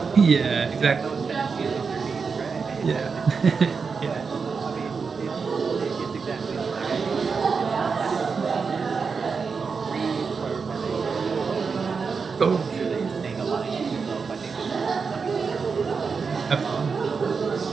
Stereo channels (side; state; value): left; quieter; 5.3 dB